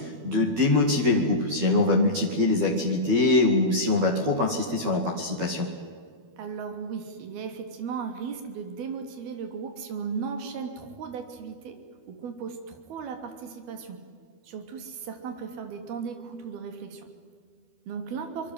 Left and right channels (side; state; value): left; late; 12 ms